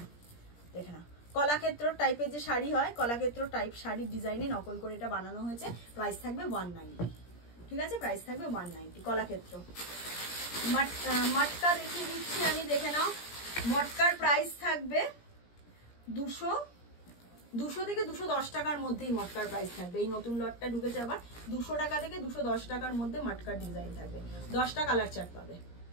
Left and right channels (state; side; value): late; right; 17 ms